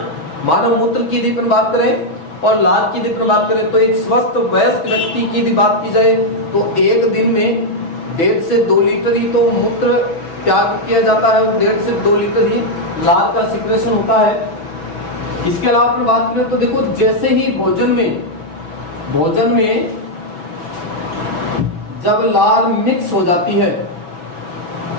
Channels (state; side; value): late; right; 5.7 ms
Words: मानव मूत्र की यदि अपन बात करें और लाल की यदि अपन बात करें तो एक स्वस्थ वयस्क व्यक्ति की यदि बात की जाए तो एक दिन में 1.5 से 2 लीटर ही तो मूत्र त्याग किया जाता है, 1.5 से 2 लीटर ही लाल का सिक्रेशन होता है। इसके अलावा अपन बात करें तो देखो, जैसे ही भोजन में जब लाल मिक्स हो जाती है,